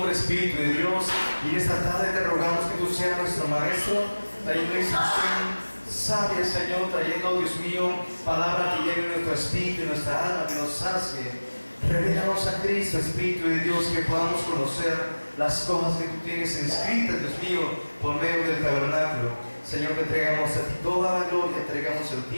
Espíritu de Dios, y esta tarde te rogamos que tú seas nuestro Maestro, trayendo instrucción sabia, Señor, trayendo, Dios mío, palabra que llene nuestro espíritu y nuestra alma, que nos sacie. Revélanos a Cristo, Espíritu de Dios, que podamos conocer las cosas que tú tienes inscritas, Dios mío, por medio del tabernáculo. Señor, te entregamos a ti toda la gloria, entregamos el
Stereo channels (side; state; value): both; inverted; correlation -1.00